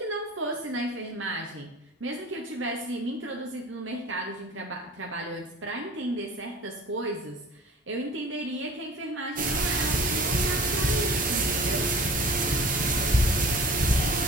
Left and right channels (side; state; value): both; normal; correlation 0.43